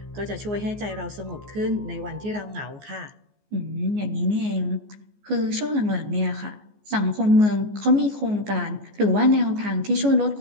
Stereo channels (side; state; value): left; late; 14 ms